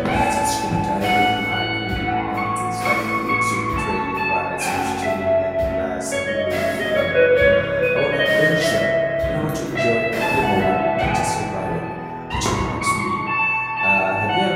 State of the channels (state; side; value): identical; both; correlation 1.00